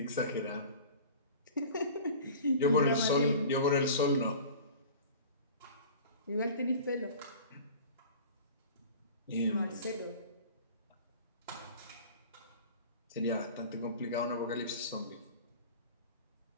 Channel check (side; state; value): both; inverted; correlation -0.39